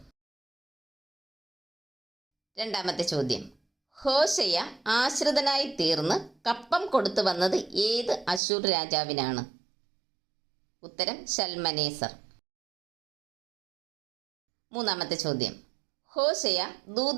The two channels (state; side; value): drops out; left; at 8.4 s